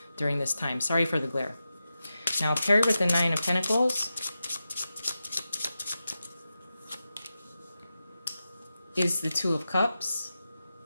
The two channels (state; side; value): inverted; both; correlation -0.91